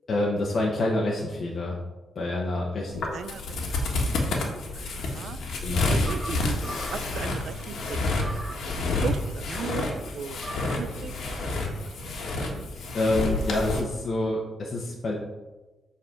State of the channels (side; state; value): both; normal; correlation 0.75